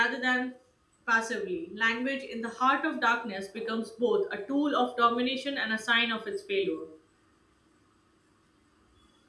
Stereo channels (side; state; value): both; identical; correlation 1.00